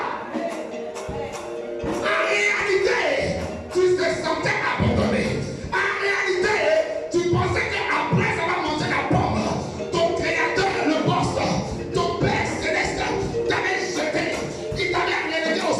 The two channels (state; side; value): identical; both; correlation 1.00